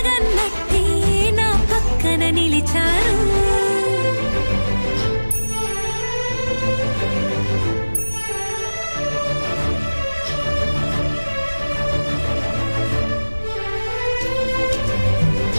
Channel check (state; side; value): inverted; both; correlation -1.00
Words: నా పక్కన నిలిచారు.